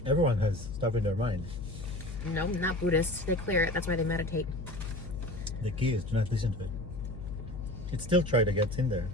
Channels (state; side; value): noise; left; hum, 9 dB below the sound